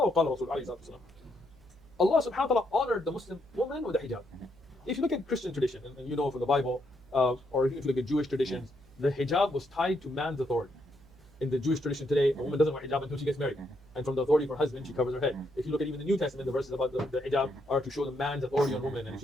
subhanahu wa ta'ala honored the Muslim woman with the hijab. If you look at Christian tradition, and you know from the Bible, or if you look at Jewish traditions, the hijab was tied to man's authority. In the Jewish tradition today, a woman doesn't wear hijab until she gets married. And from the authority of her husband, she covers her head. If you look at even the New Testament, the verses about the hijab are to show the man's authority on woman, and if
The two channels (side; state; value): right; noise; hum, 25 dB below the sound